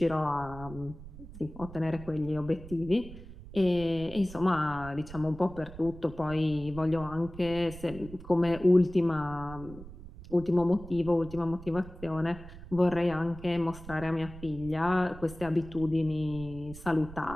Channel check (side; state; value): right; noise; rumble, 15 dB below the sound